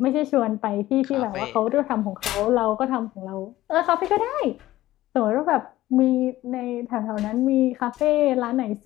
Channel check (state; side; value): quieter; right; 15.8 dB